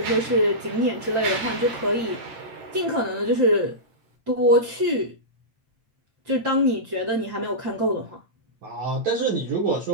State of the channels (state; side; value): late; left; 8.8 ms